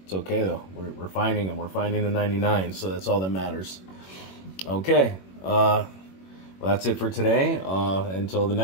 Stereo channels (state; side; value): late; right; 21 ms